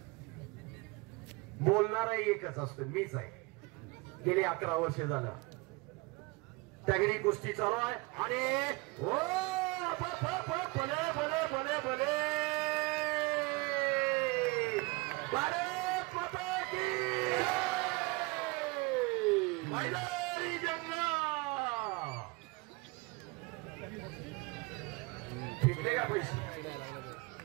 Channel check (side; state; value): left; quieter; 25.3 dB